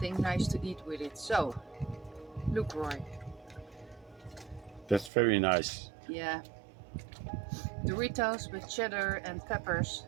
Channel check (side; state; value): left; drops out; at 5.1 s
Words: nice to eat with it. So, look, Roy. That's very nice. Yeah. Doritos with cheddar and peppers